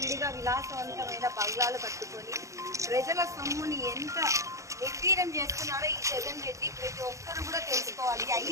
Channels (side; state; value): left; late; 0.15 ms